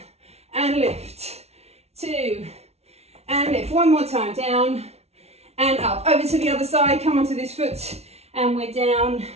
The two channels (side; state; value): left; late; 0.31 ms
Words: and lift, two, and lift, one more time, down, and up, over to the other side, come onto this foot, and we're down,